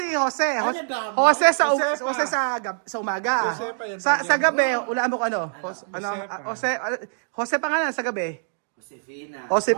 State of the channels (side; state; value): left; silent; digital silence